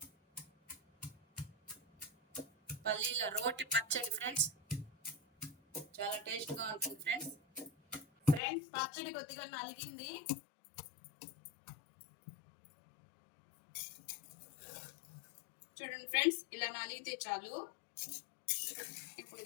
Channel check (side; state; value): right; drops out; at 8.4 s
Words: పల్లీల రోటి పచ్చడి ఫ్రెండ్స్ చాలా టేస్ట్గా ఉంటుంది ఫ్రెండ్స్. ఫ్రెండ్స్ పచ్చడి కొద్దిగా నలిగింది. చూడండి ఫ్రెండ్స్, ఇలా నలిగితే చాలు. ఇప్పుడు